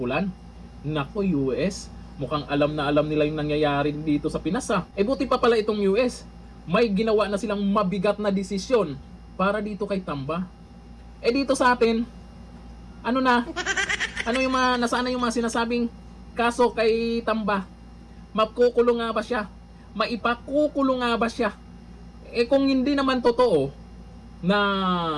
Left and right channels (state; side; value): identical; both; correlation 1.00